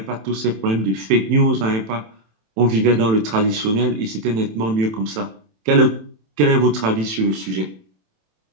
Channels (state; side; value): late; left; 27 ms